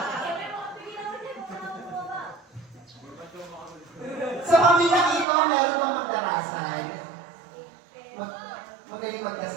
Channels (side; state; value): left; drops out; at 5.2 s